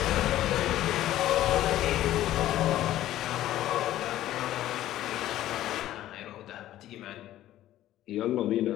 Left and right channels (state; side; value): quieter; right; 13.7 dB